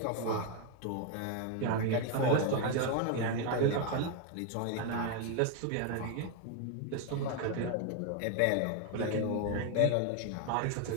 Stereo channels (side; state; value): both; different; correlation 0.01